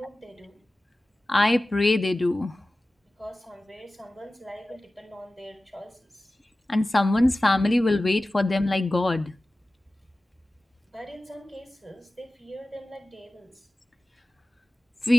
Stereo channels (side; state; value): both; normal; correlation 0.96